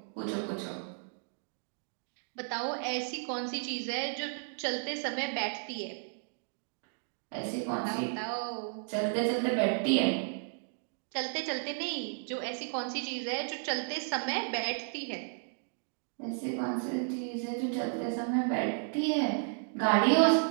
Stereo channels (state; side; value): silent; left; 55 dB below the other